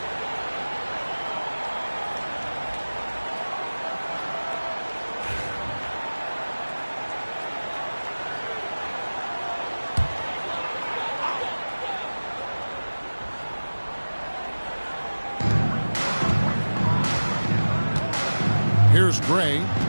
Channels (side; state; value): both; inverted; correlation -1.00